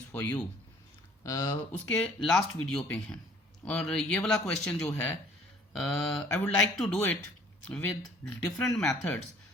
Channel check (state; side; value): normal; both; correlation 0.55